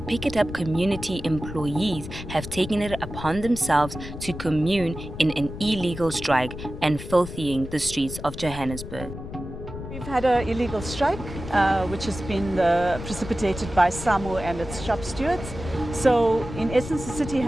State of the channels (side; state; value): left; noise; rumble, 10 dB below the sound